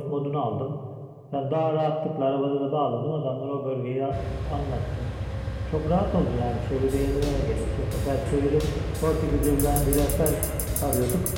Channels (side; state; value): both; identical; correlation 1.00